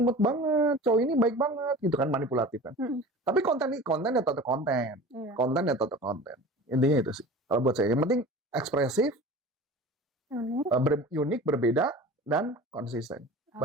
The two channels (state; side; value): normal; both; correlation 0.38